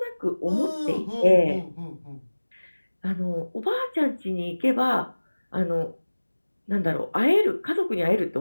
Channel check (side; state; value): both; inverted; correlation -1.00